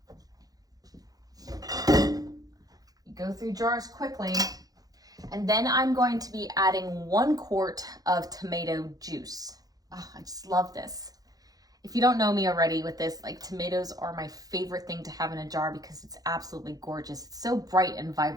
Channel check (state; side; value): late; left; 0.18 ms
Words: You go through jars quickly. And then I'm going to be adding 1 quart of tomato juice. Oh, I just love this. If you don't know me already with this, like, tomatoes are my favorite thing to have in a jar because it's absolutely gorgeous. It's so bright and